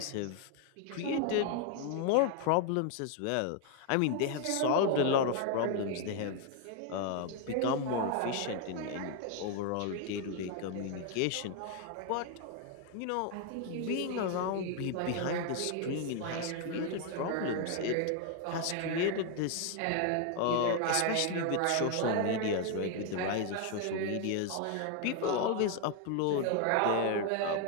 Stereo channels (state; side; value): different; both; correlation 0.00